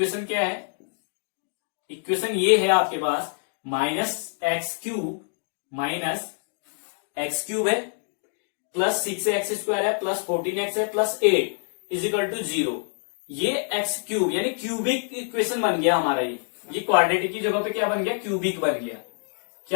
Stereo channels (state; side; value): silent; right; 61 dB below the other